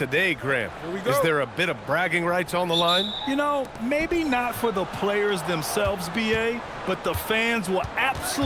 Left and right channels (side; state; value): both; identical; correlation 1.00